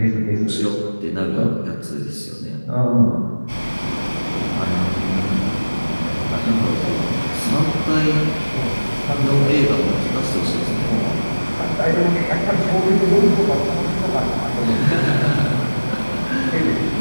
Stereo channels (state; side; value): inverted; both; correlation -1.00